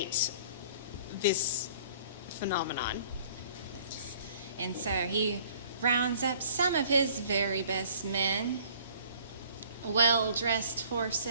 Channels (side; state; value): both; inverted; correlation -0.55